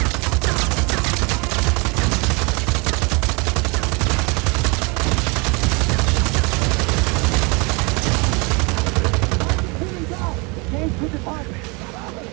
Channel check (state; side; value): quieter; left; 29.6 dB